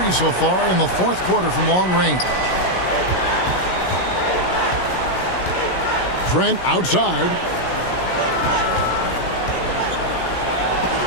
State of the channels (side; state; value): right; late; 16 ms